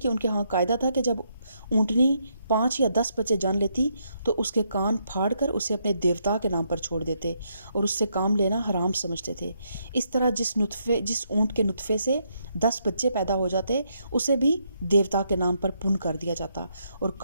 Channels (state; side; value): inverted; both; correlation -0.76